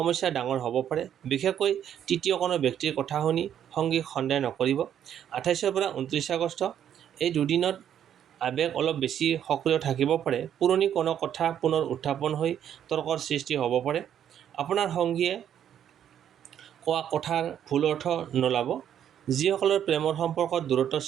ডাঙৰ হ'ব পাৰে। বিশেষকৈ তৃতীয় কোনো ব্যক্তিৰ কথা শুনি সংগীক সন্দেহ নকৰিব। 28 পৰা 29 আগষ্ট এই দুদিনত আৱেগ অলপ বেছি সক্ৰিয় থাকিব পাৰে। পুৰণি কোনো কথা পুনৰ উত্থাপন হৈ তৰ্কৰ সৃষ্টি হ'ব পাৰে। আপোনাৰ সংগীয়ে কোৱা কথাৰ ভুল অৰ্থ নোলাব। যিসকলৰ প্ৰেমৰ সম্পৰ্কত দূৰত্বৰ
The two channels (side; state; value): left; quieter; 9.7 dB